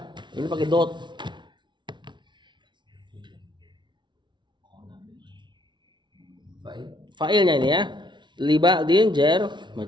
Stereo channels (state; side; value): late; left; 0.23 ms